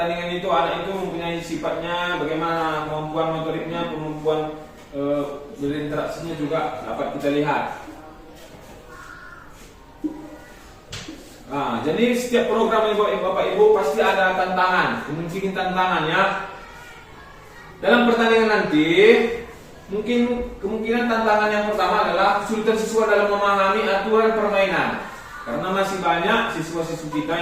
itu anak itu mempunyai sifatnya, bagaimana kemampuan motoriknya, kemampuan berinteraksinya juga dapat kita lihat. Nah, jadi setiap program Bapak Ibu pasti ada tantangan, kemungkinan tantangan ya. Dalam pertandingan nanti, kemungkinan tantangan yang pertama adalah kesulitan siswa dalam memahami aturan permainan. Karena masih banyak siswa-siswa kita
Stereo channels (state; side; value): identical; both; correlation 1.00